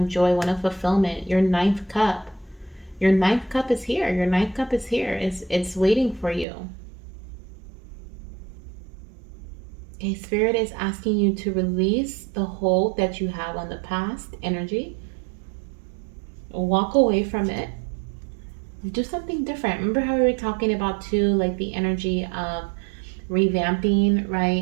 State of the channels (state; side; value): drops out; left; at 6.5 s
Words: joy, one of fulfillment. Your ninth cup. Your ninth cup is here. Your ninth cup is here. It's waiting for you. Okay, Spirit is asking you to release the hold that you have on the past energy. Walk away from it. Do something different. Remember how we were talking about too, like the energy of revamping,